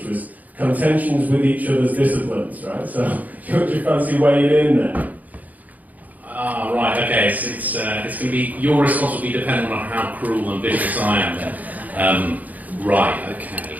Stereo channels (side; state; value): left; late; 0.079 ms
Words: was contentions with each other's disciplines, right? So, do you fancy weighing in there? Right, okay, it's going to be, your response will be dependent on how cruel and vicious I am then. Right, okay,